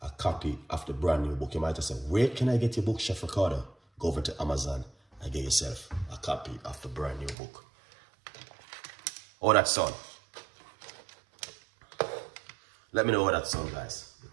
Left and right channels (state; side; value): drops out; left; at 7.4 s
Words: a copy of the brand new book. You might have said, where can I get your book, Chef Ricardo? Go over to Amazon and get yourself a copy of the brand new book. Oh, that sound. Let me know what that sound, guys,